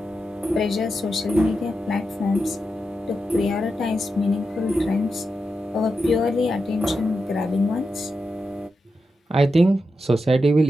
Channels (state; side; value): normal; both; correlation 0.88